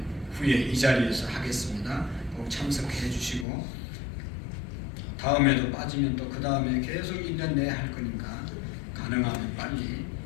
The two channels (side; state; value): right; drops out; at 3.5 s